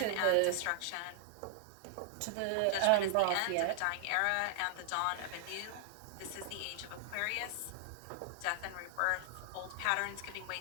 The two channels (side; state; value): both; different; correlation 0.00